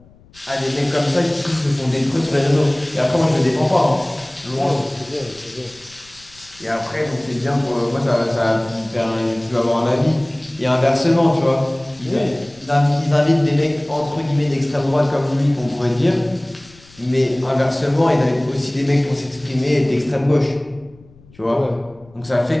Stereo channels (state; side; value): noise; left; rumble, 26 dB below the sound